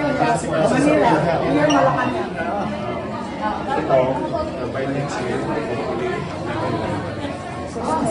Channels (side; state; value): both; identical; correlation 1.00